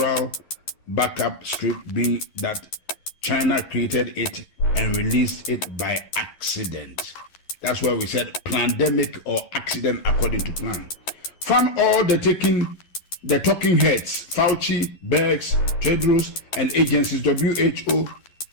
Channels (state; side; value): late; right; 11 ms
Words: backup script being that China created it and released it by accident. That's why we said pandemic or accident according to plan. Found all the talking heads, Fauci, Bergs, Tedros, and agencies, WHO,